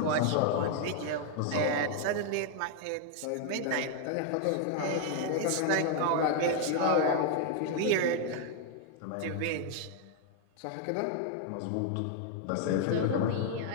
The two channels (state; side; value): different; both; correlation 0.00